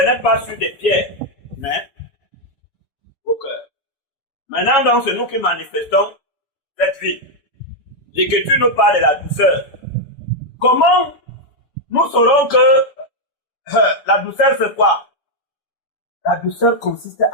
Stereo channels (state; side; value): late; right; 6.9 ms